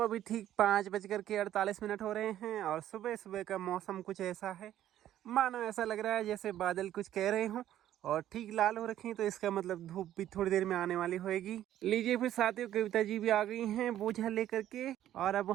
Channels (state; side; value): quieter; left; 12.2 dB